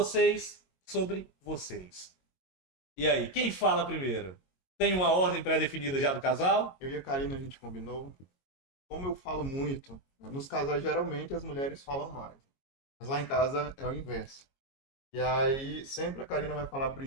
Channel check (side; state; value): right; late; 22 ms